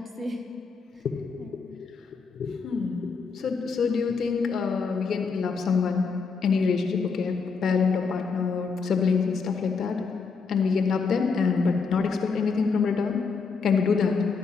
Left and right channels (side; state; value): right; quieter; 5.0 dB